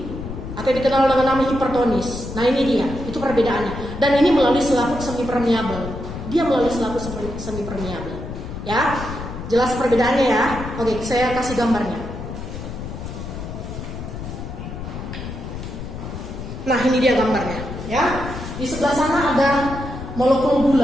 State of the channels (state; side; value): noise; left; rumble, 8 dB below the sound